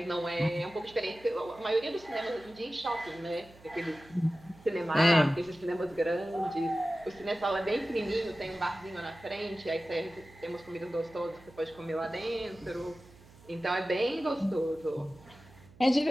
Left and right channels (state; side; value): noise; right; hum, 23 dB below the sound